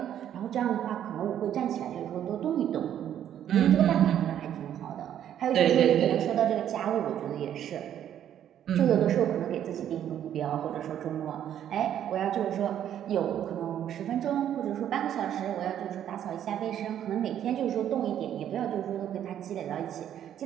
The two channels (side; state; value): left; quieter; 10.4 dB